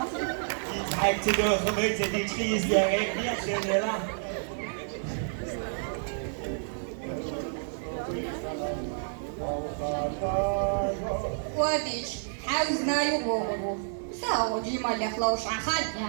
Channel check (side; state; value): left; silent; digital silence